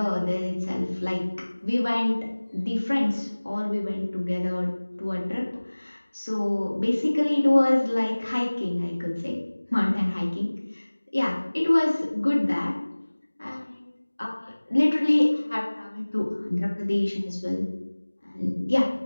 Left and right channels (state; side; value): inverted; both; correlation -1.00